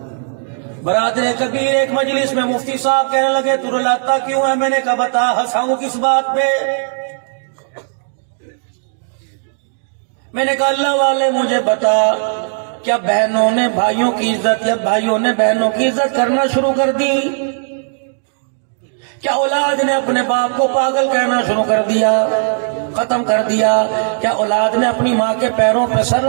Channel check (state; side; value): silent; left; digital silence